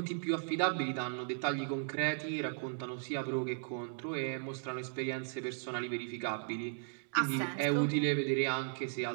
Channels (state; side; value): silent; left; digital silence